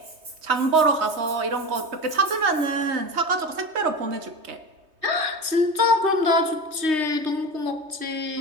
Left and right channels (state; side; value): late; left; 3.2 ms